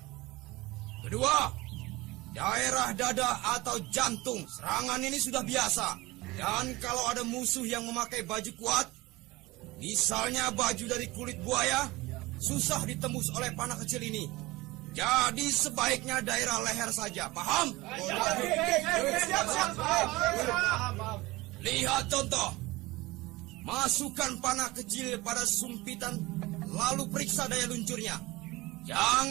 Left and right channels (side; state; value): left; quieter; 20.8 dB